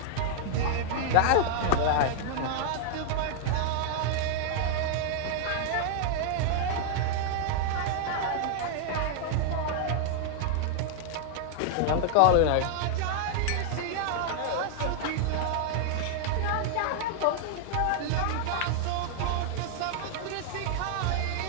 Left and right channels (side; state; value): both; different; correlation 0.00